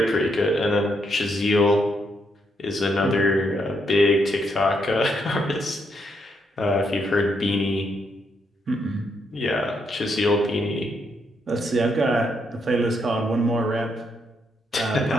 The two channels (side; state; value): both; normal; correlation 0.77